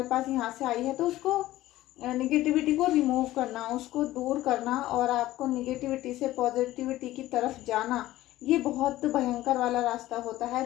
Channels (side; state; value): right; quieter; 15.7 dB